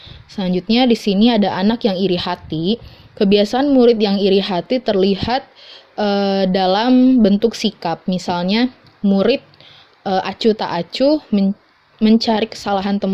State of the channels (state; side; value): identical; both; correlation 1.00